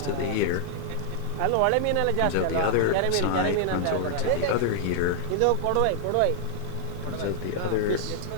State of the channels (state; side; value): different; both; correlation -0.01